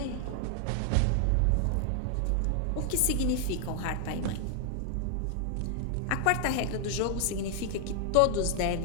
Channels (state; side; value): different; both; correlation 0.00